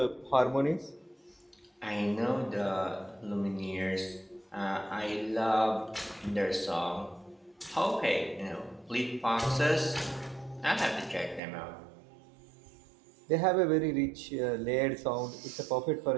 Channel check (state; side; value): drops out; left; at 11.4 s